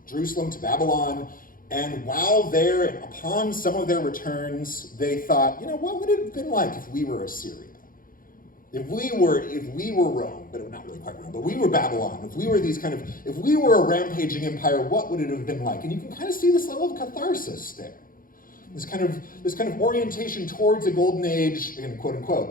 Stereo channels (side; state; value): right; late; 0.41 ms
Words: Jerusalem to Babylon, and while there and upon some of their returns, they thought, what would it have been like if we were Assyria? If we were Rome, but not really quite Rome, but we were Babylon, if we were a rampaging empire, what would it have been like? And you can kind of see this level of catharsis there. This kind of orientation towards a golden age, again, quote